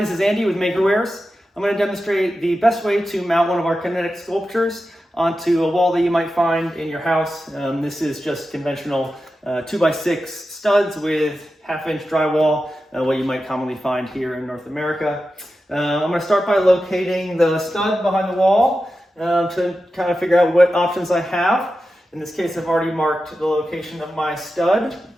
is Andy with Makerwares. I'm going to demonstrate the best way to mount one of our kinetic sculptures onto a wall that you might find in your house. This is just conventional 2x6 studs with 1/2 inch drywall, what you might commonly find here in North America. I'm going to start by locating the stud behind the wall to kind of figure out what options I have. In this case, I've already marked the location of my stud.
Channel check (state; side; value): normal; both; correlation 0.92